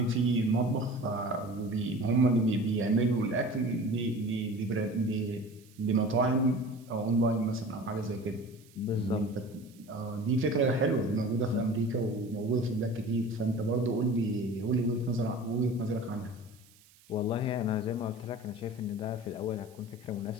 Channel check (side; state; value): right; noise; hiss, 27 dB below the sound